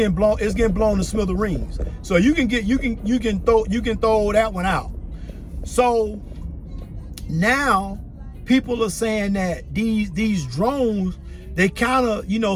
blown to smithereens. So you can throw that one out. So now people are saying that these drones, they kind of,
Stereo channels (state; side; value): identical; both; correlation 1.00